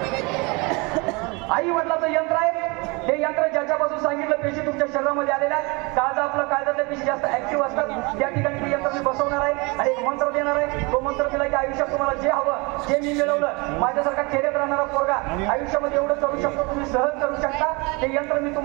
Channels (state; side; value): quieter; left; 27.9 dB